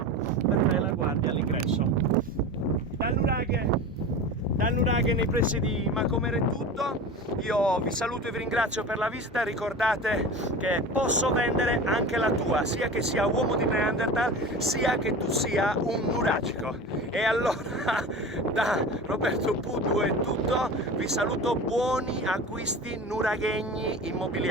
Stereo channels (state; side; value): normal; both; correlation 0.32